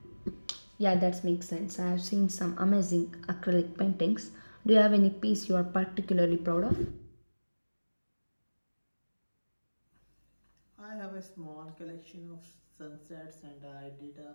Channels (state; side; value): inverted; both; correlation -1.00